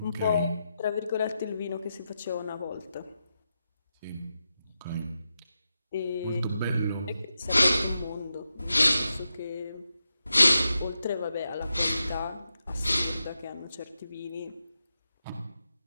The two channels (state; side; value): inverted; both; correlation -0.88